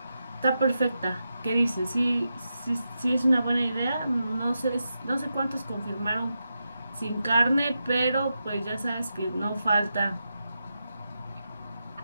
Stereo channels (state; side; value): inverted; both; correlation -0.88